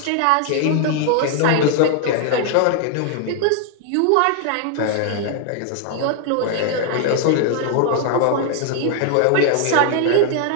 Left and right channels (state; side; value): different; both; correlation 0.00